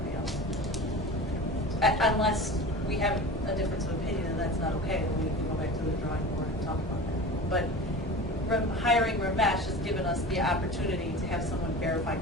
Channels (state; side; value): normal; both; correlation 0.34